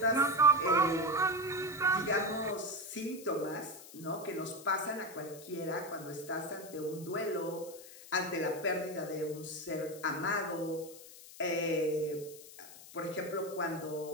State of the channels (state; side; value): noise; left; hiss, 17 dB below the sound